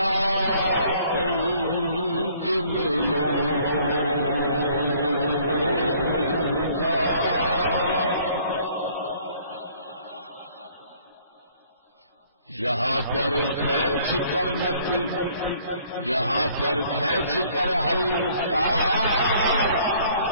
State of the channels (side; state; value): both; inverted; correlation -0.58